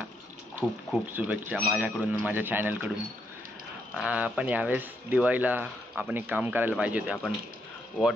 खूप खूप शुभेच्छा माझ्याकडून, माझ्या चॅनलकडून. पण यावेळेस दिवाळीला आपण एक काम करायला पाहिजे होते. आपण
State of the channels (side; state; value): both; normal; correlation 0.77